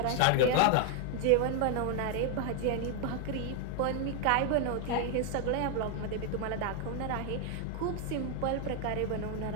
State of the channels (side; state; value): both; different; correlation 0.00